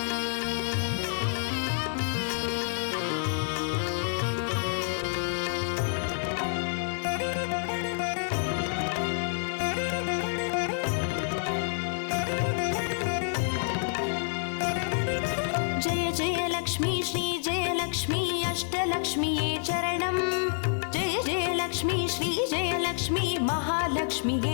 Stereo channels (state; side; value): silent; right; 59 dB below the other